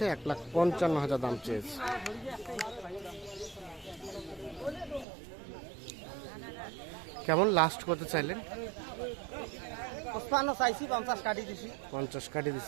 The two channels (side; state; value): left; drops out; at 5.1 s